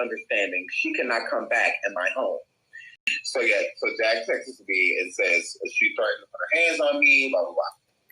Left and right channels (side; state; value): both; identical; correlation 1.00